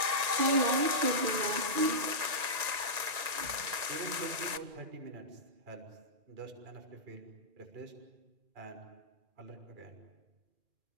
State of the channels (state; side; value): late; left; 2.4 ms